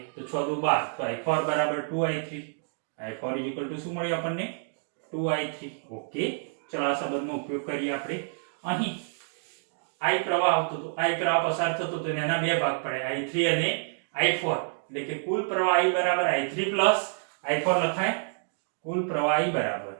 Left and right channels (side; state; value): left; silent; digital silence